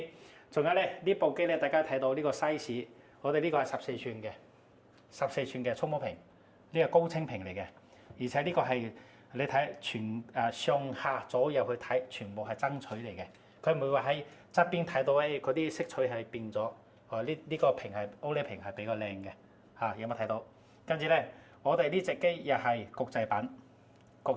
仲有咧，呢部機咧，大家睇到呢個 size， 我哋呢個係14寸嘅14寸嘅觸摸屏，呢個高清屏嚟嘅，而且呢個係你睇上下左右去睇，全部係爭取嚟嘅，佢唔會話喺側邊睇到嗰啲色彩係變咗，呢個屏係 OLED 屏係比較靚嘅，嚇有冇睇到？跟住咧，我哋呢隻機又係國際版，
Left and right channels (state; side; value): identical; both; correlation 1.00